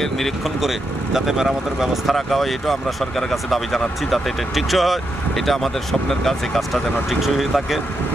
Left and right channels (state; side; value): normal; both; correlation 0.83